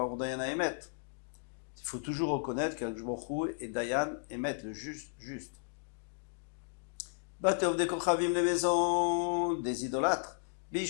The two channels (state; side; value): silent; right; digital silence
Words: Dayan Emet. Il faut toujours reconnaître qu'Akadosh Baruch Hu est Dayan Emet, le juste. Bateov de Kochavim, les maisons des idolâtres.